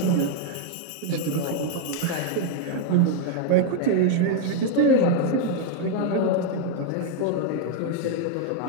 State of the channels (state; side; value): different; both; correlation 0.00